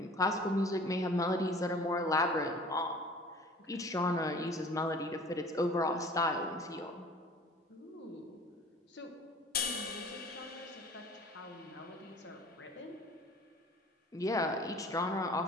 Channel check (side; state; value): both; normal; correlation 0.47